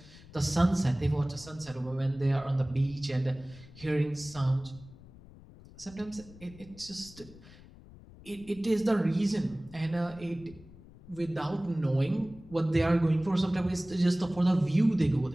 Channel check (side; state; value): left; noise; rumble, 20 dB below the sound